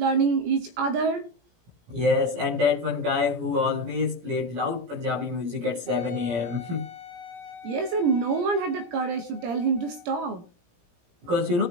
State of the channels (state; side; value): late; left; 17 ms